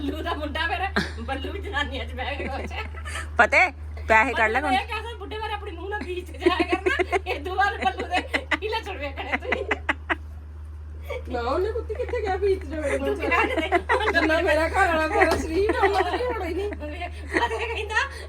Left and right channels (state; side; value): identical; both; correlation 1.00